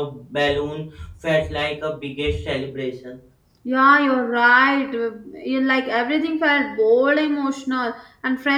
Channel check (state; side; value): identical; both; correlation 1.00